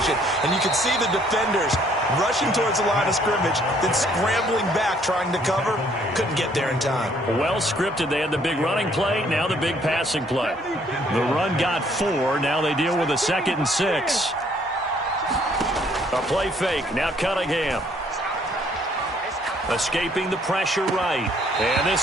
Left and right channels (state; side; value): normal; both; correlation 0.64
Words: And you can see the defenders rushing towards the line of scrimmage, then scrambling back, trying to cover. Couldn't get there in time. Well scripted. They had the big running play, now the big passing play. The run got 4. Now they deal with a 2nd and 6. A play fake. Now Cunningham. Escaping the pressure right. And